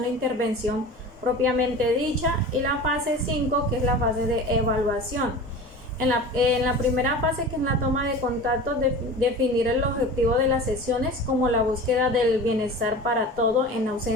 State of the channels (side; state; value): both; normal; correlation 0.35